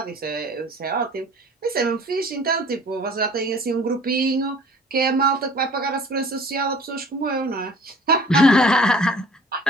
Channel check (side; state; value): both; normal; correlation 0.49